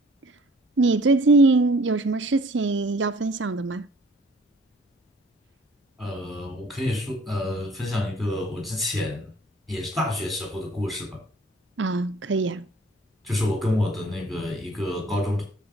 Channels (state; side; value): normal; both; correlation 0.54